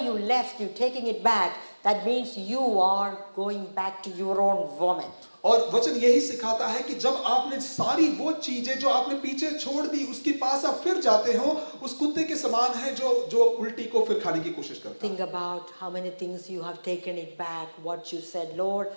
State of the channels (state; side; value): inverted; both; correlation -1.00